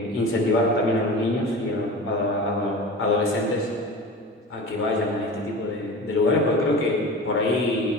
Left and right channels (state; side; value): normal; both; correlation 0.33